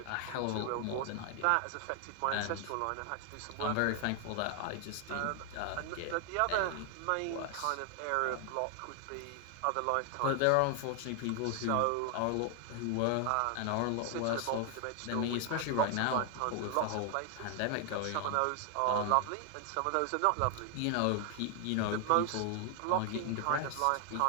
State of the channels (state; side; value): different; both; correlation 0.00